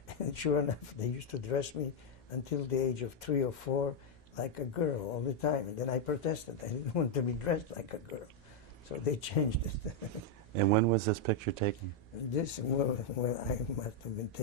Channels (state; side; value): normal; both; correlation 0.00